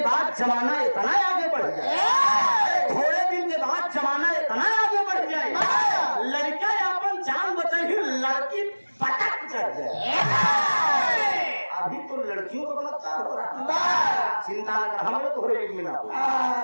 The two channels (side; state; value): both; inverted; correlation -1.00